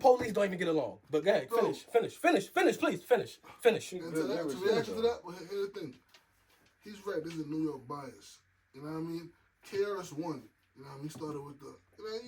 don't even get along. But go ahead, finish, please, finish. And to reaction to that, well, here's the thing. He's right, this is New York bias. You know what I mean? KRS-One, you know what I mean? He started with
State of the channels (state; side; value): identical; both; correlation 1.00